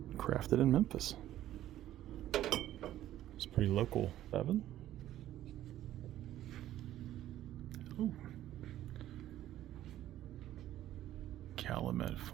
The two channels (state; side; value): quieter; left; 13.1 dB